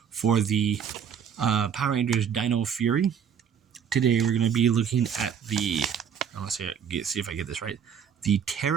for the Power Rangers Dino Fury. Today we're going to be looking at the, let's see if I get this right, the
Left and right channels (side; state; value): left; quieter; 7.8 dB